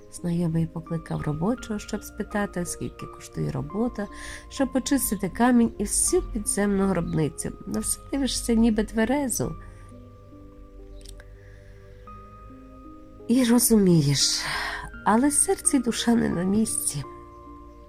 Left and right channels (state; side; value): identical; both; correlation 1.00